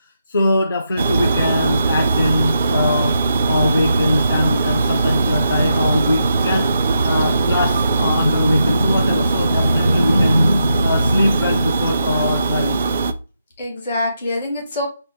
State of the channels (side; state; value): both; inverted; correlation -0.83